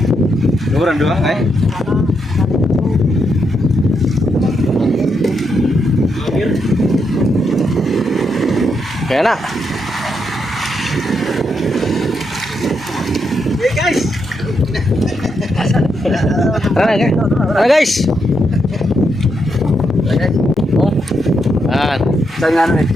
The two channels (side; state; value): both; normal; correlation 0.81